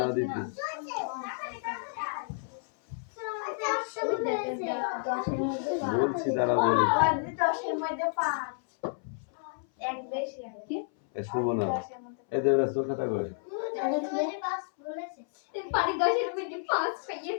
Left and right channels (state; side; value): silent; right; 57 dB below the other